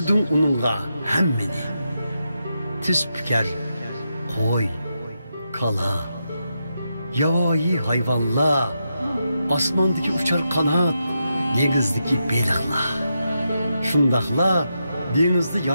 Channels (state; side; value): inverted; both; correlation -0.85